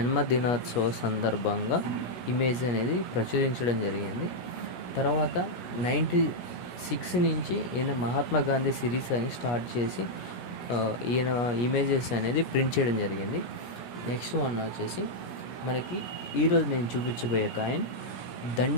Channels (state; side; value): late; right; 17 ms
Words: సందర్భంగా ఇమేజ్ అనేది ప్రచురించడం జరిగింది. తర్వాత 96 నుంచి ఈయన మహాత్మా గాంధీ సిరీస్ అని స్టార్ట్ చేసి ఈయన ఇమేజెస్ అనేది ప్రింట్ చేయడం జరిగింది. నెక్స్ట్ వన్ వచ్చేసి మనకి ఈరోజు నేను చూపించబోయే కాయిన్